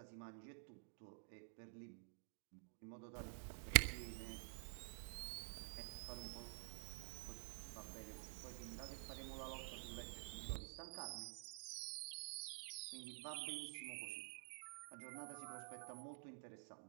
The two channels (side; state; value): left; silent; digital silence